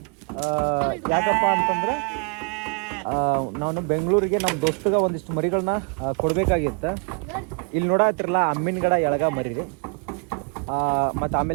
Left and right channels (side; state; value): left; quieter; 36.8 dB